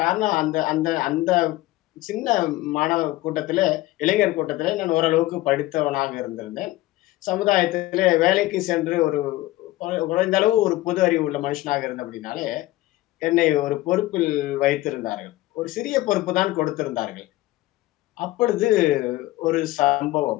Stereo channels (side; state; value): right; quieter; 17.5 dB